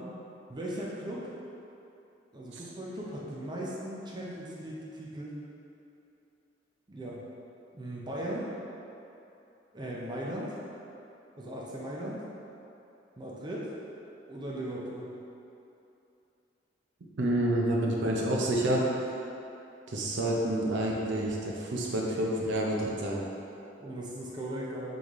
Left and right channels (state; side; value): normal; both; correlation 0.48